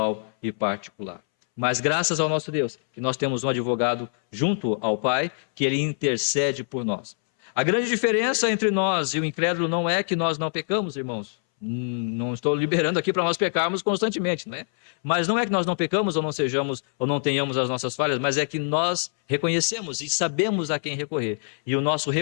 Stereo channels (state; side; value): silent; right; 62 dB below the other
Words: e particular. Mas graças ao nosso Deus, que nós temos um advogado junto ao Pai, que ele intercede por nós. A grande diferença entre nós e o incrédulo não é que nós não pecamos, irmãos. Não estou liberando aqui para nós pecarmos constantemente, né? Mas não é que nós não pecamos ou não sejamos ou não tenhamos as nossas falhas, mas é que nós reconhecemos e sabemos a quem recorrer. E o nosso